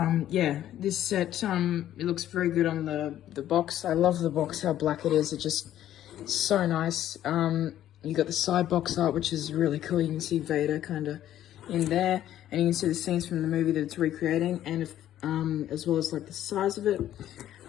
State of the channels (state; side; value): quieter; right; 12.1 dB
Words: yeah, this set, it looks very good on the box. I love the box, how black it is. It just so nice. You got the side box art, which is really cool. You can see Vader kind of in there, and you can see the scenes from the movie that it's recreating, and as well as like the size of it,